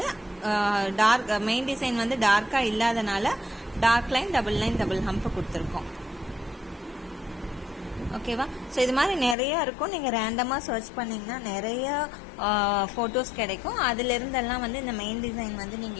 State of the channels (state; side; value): drops out; right; at 9.3 s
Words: மெயின் டிசைன் வந்து டார்க்காக இல்லாதனால டார்க் லைன், டபுள் ஹம்ப் கொடுத்துருக்கோம். ஓகேவா? ஸோ இது மாதிரி நிறைய இருக்கும். நீங்கள் ரேண்டமாக சர்ச் பண்ணிங்கன்னா நிறைய ஃபோட்டோஸ் கிடைக்கும். அதிலிருந்தெல்லாம் வந்து இந்த மெயின் டிசைன் வந்து